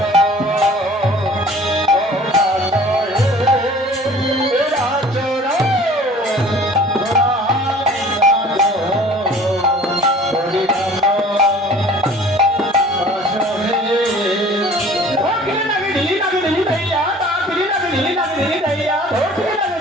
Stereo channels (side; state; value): both; normal; correlation 0.48